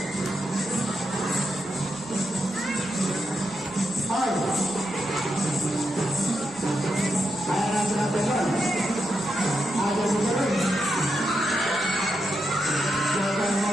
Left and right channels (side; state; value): left; noise; rumble, 27 dB below the sound